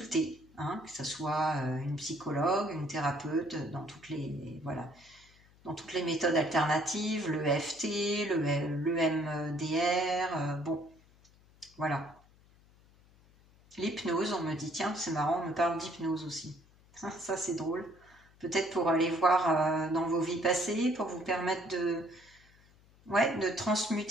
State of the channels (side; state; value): left; noise; hum, 28 dB below the sound